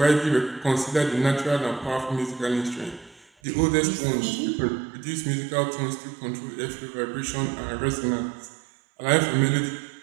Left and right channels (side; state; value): left; drops out; at 3.2 s